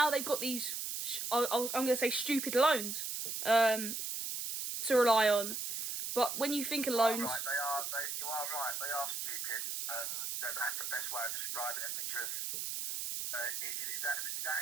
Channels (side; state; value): right; noise; hiss, 3 dB below the sound